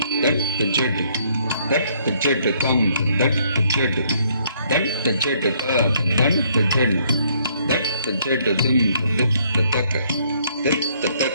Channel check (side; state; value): both; inverted; correlation -0.67